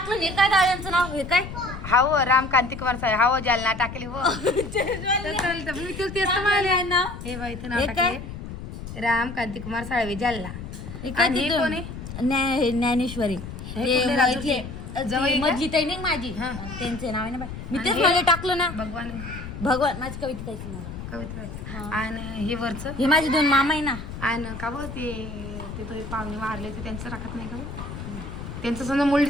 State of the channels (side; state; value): left; noise; rumble, 10 dB below the sound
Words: नाही काय दादांचं नाव. हे काय हाव राम कांती कुमार साहेब हाव जालना टाकले हो. मी तेच म्हणाले नाव. हे बाई इथं नाव टाकले राम कांती कुमार साळवे जालना. हे काय आणि हे तिथं? कोण आहे? ज्ञानेश्वरी. हे कुठले राजूरचे? जवळ आहे का? मधली ताई नाही माझी. त्यांचे नाव आहे ना बाई. मी तेच मध्ये टाकलं ना. भगवान माझी कविता ताईचं नाव. कविता. आणि हे वरचं हे माझे 2 मामा आहे ना. आणि का बघ ते तो पाहुणे मारले ते त्यांचं टाकत नाही का? त्यांचं समजा